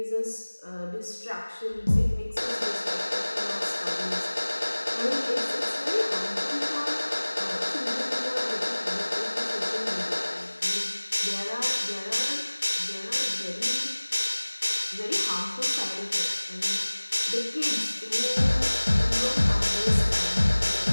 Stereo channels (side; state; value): both; inverted; correlation -1.00